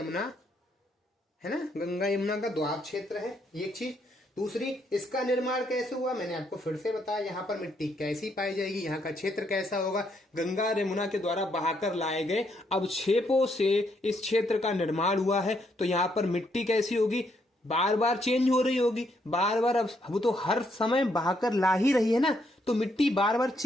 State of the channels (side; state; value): both; normal; correlation 0.74